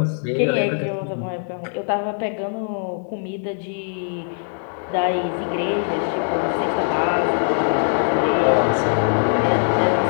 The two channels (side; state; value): right; silent; digital silence